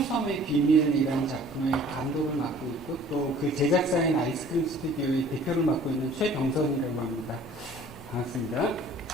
비밀이라는 작품의 감독을 맡고 있고 또 그 제작사인 아이스크림 스튜디오의 대표를 맡고 있는 최병선이라고 합니다. 반갑습니다.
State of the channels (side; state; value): left; noise; rumble, 25 dB below the sound